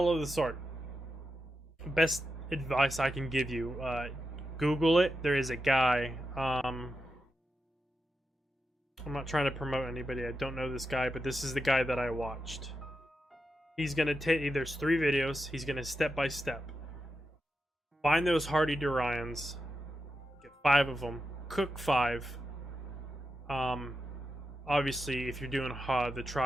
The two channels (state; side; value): normal; both; correlation 0.88